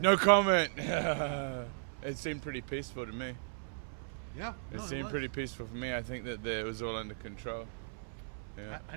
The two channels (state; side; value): silent; left; 54 dB below the other